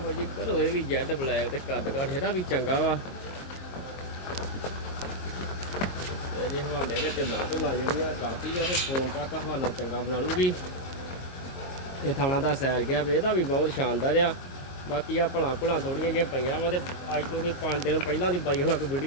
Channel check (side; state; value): right; late; 22 ms